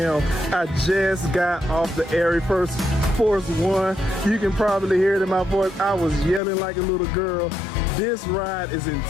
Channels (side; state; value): right; drops out; at 6.4 s